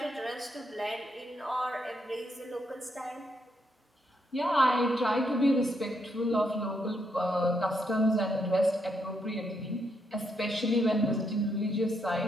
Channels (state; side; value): normal; both; correlation 0.78